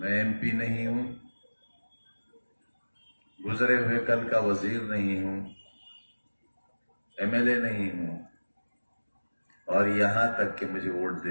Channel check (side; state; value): both; inverted; correlation -1.00